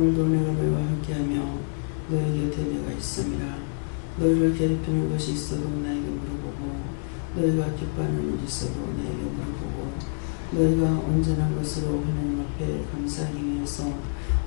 내가 너희와 함께하며 너희 곁에 내가 있음이라. 너희를 괴롭히는 것이 있어도 나에게 물어보고 너희가 기뻐하는 일이 있어도 나에게 물어보고 너희가 온전한 것으로 하나님 앞에 감사하기 위해서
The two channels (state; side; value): silent; right; 60 dB below the other